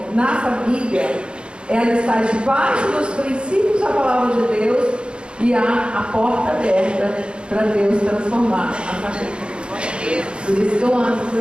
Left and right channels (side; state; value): left; late; 0.055 ms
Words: na família, ela está debaixo dos princípios da palavra de Deus e há a porta aberta para Deus transformar a família. Por isso que eu amo com